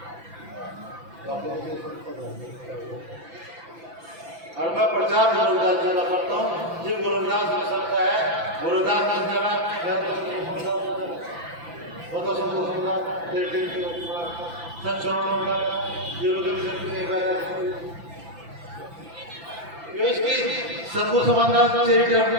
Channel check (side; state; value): left; late; 5.9 ms